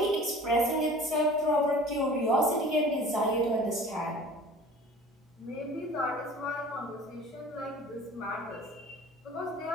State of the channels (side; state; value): both; normal; correlation 0.44